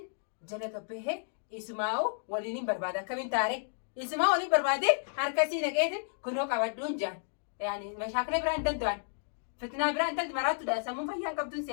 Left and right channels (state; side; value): silent; right; digital silence